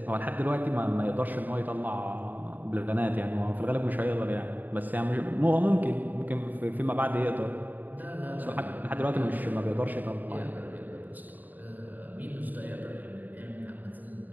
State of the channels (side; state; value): left; late; 0.085 ms